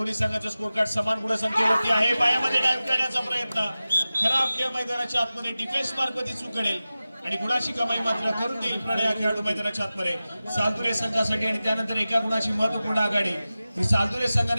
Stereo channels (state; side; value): inverted; both; correlation -0.96